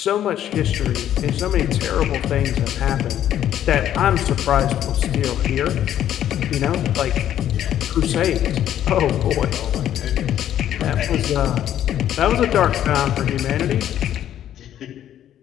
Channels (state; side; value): quieter; right; 11.1 dB